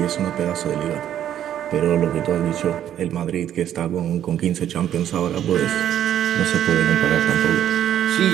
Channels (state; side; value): quieter; left; 10.7 dB